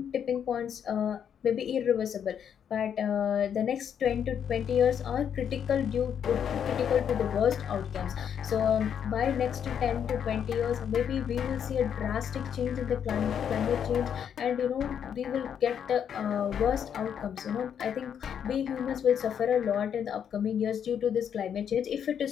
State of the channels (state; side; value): quieter; right; 8.4 dB